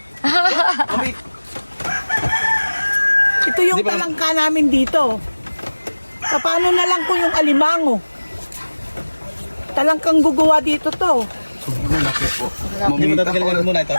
Ito yung talangka namin dito. Paano na lang kung yung alimango? Talangkang gugawa dito to. Hindi mo tatagalan muna ito.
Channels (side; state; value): both; inverted; correlation -1.00